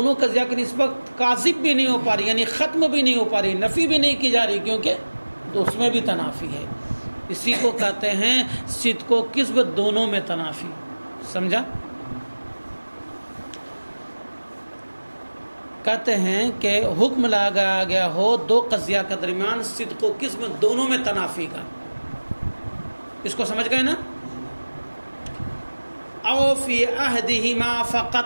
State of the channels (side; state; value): both; inverted; correlation -1.00